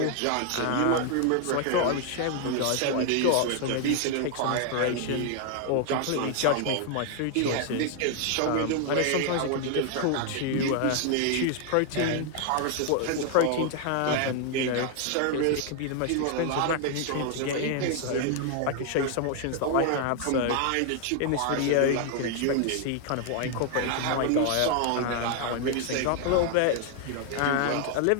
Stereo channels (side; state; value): both; different; correlation 0.00